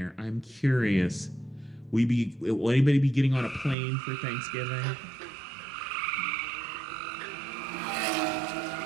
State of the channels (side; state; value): left; drops out; at 3.8 s